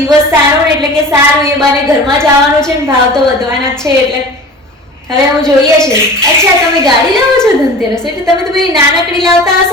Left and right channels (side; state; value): both; normal; correlation 0.38